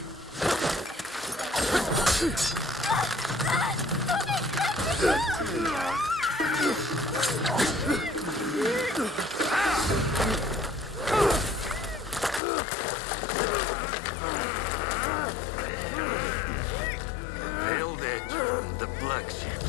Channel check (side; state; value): right; drops out; at 12.4 s